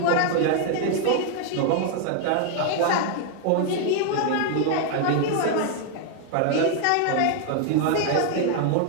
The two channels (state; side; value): different; both; correlation 0.00